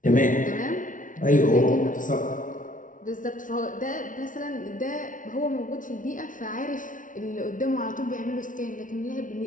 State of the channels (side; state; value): right; late; 0.38 ms